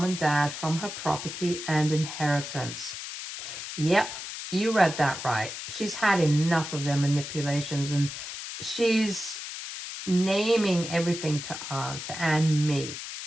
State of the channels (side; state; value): left; noise; hiss, 8 dB below the sound